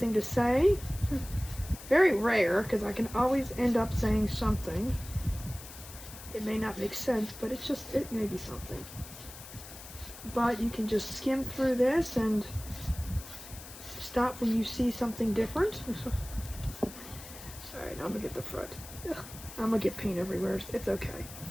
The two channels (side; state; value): left; noise; hiss, 15 dB below the sound